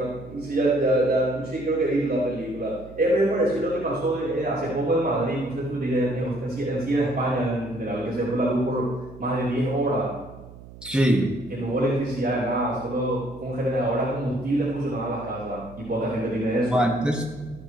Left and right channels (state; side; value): noise; right; hum, 18 dB below the sound